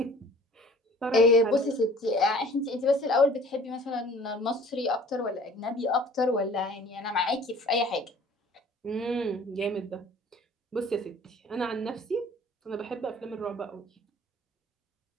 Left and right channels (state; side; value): normal; both; correlation 0.49